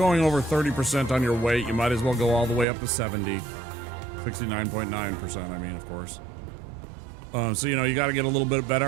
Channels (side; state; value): left; drops out; at 2.7 s